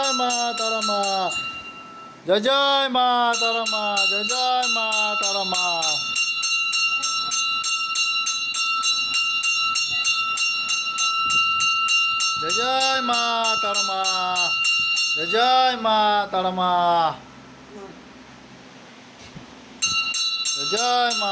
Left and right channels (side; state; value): both; identical; correlation 1.00